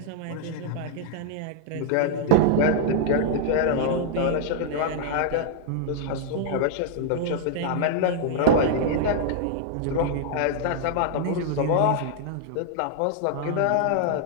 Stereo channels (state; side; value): different; both; correlation -0.01